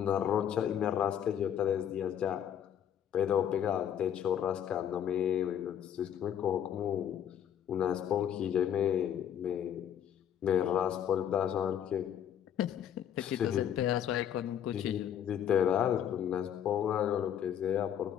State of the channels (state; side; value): quieter; right; 9.5 dB